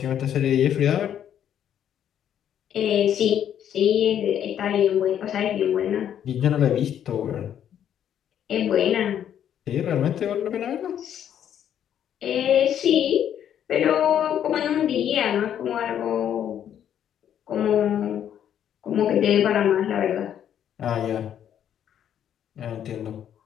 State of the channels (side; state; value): right; quieter; 9.8 dB